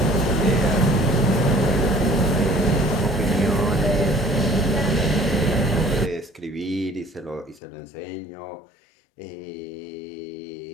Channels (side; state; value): right; drops out; at 7.6 s